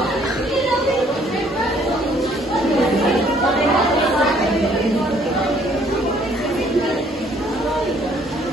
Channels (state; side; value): normal; both; correlation 0.62